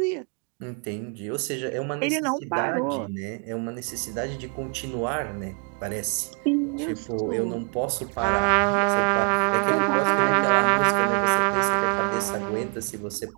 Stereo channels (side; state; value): left; quieter; 39.1 dB